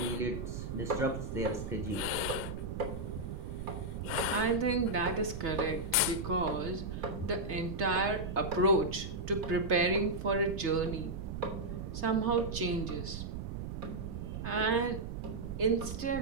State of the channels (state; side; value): noise; right; rumble, 6 dB below the sound